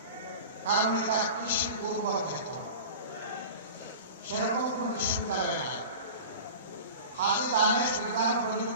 কারণ এটা কৃষি উর্বর ক্ষেত্র। সেরকম কোন বিশ্ববিদ্যালয় নাই। হাজি দানেশ বিজ্ঞান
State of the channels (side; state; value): both; inverted; correlation -0.35